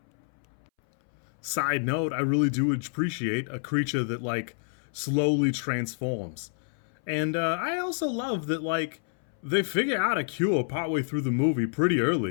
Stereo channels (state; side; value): silent; right; 59 dB below the other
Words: Side note, I really do appreciate a creature that, like, slowly transforms. And I also love that, like, they figure out a cure partway through the movie pretty